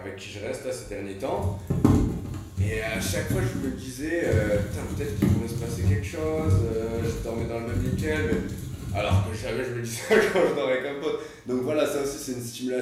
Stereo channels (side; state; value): both; identical; correlation 1.00